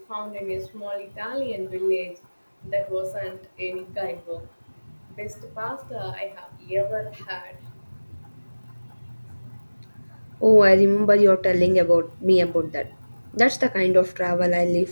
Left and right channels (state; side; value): inverted; both; correlation -1.00